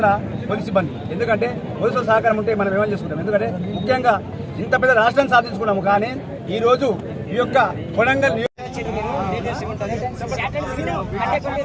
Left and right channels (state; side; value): identical; both; correlation 1.00